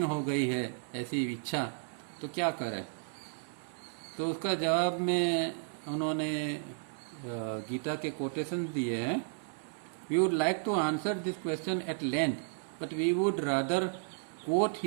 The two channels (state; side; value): silent; left; digital silence